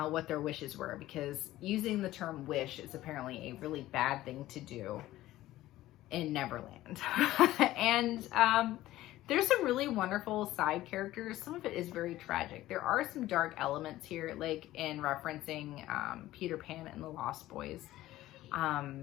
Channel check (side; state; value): right; quieter; 15.5 dB